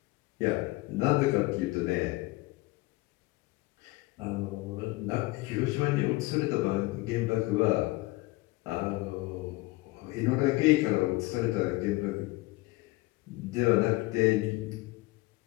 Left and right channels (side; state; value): right; quieter; 21.3 dB